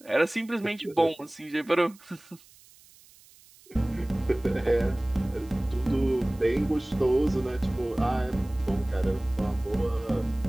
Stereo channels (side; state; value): right; noise; hiss, 26 dB below the sound